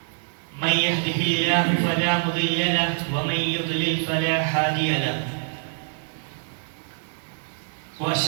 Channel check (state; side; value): silent; left; 62 dB below the other